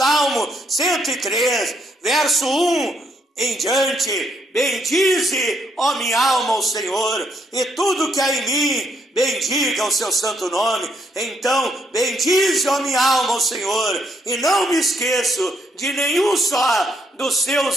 103, verso 1 em diante: bendize, ó minha alma, ao Senhor, e tudo que há em mim, bendiga o seu santo nome. Então, bendize, ó minha alma, ao Senhor, e não me esqueço de nenhum só dos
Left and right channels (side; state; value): both; normal; correlation 0.73